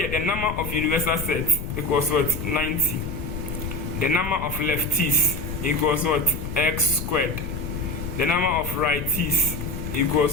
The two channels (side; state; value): left; noise; rumble, 6 dB below the sound